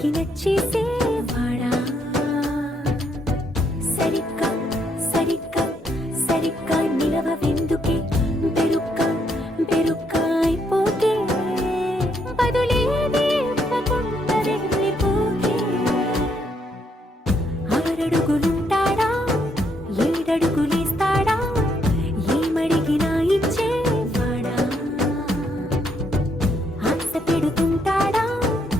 నచ్చేసేవాడా. సరిగ్గా సరిగ్గా సరిగ్గా నిలవెందుకే, బెరుక్క బెరుక్క అయిపోకే, బదులేది ఇవ్వకుండా వెళ్ళిపోకే. 6 అడుగులుంటాడా 7 అడుగులేస్తాడా ఏమడిగినా ఇచ్చేవాడా ఆశ పెడుతుంటాడా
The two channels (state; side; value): normal; both; correlation 0.74